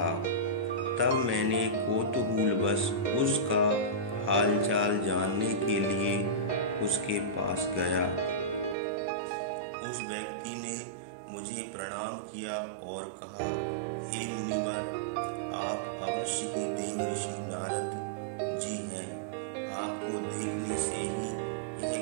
तब मैंने कौतूहलवश उसका हालचाल जानने के लिए उसके पास गया। उस व्यक्ति ने मुझे प्रणाम किया और कहा, हे मुनिवर, आप अवश्य ही देव ऋषि नारद जी हैं। आपको देखने से ही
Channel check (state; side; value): drops out; left; at 8.8 s